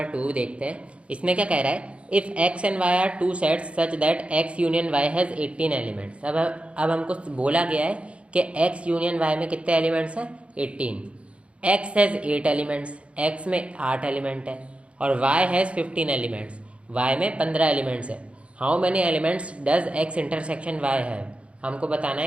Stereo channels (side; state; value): left; late; 0.061 ms